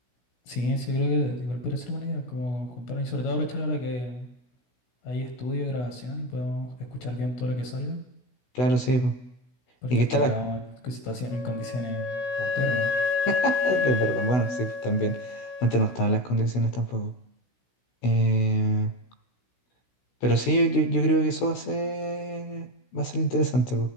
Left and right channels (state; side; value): late; right; 16 ms